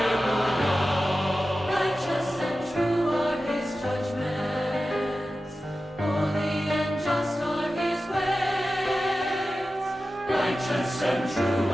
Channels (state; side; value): normal; both; correlation 0.93